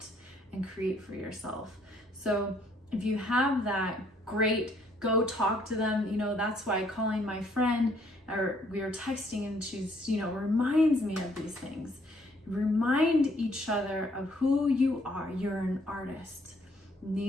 and create for yourself. So if you have that, great. Go talk to them. You know, that's why calling my friend, or we are texting, and she's, you know, reminds me of these things. Remind each other of who you are. You're an artist. And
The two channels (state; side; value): normal; both; correlation 0.66